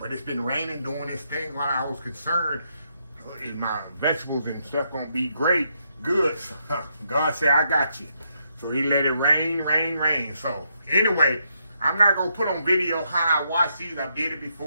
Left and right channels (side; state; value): both; inverted; correlation -0.78